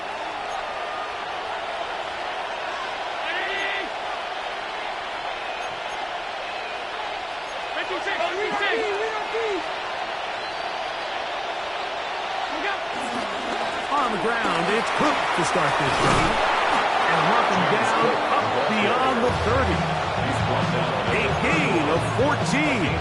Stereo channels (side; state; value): both; identical; correlation 1.00